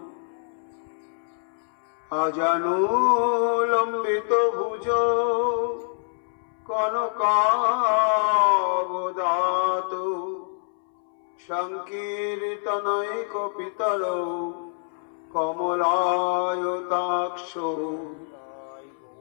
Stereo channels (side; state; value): right; silent; 61 dB below the other